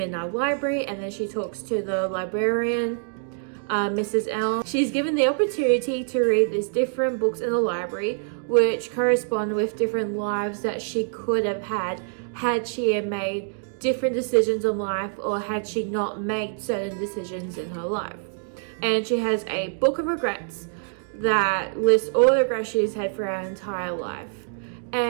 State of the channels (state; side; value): silent; left; digital silence